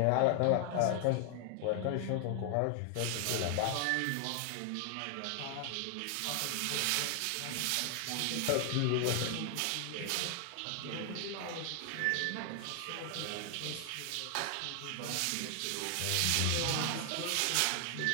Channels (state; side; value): different; both; correlation 0.00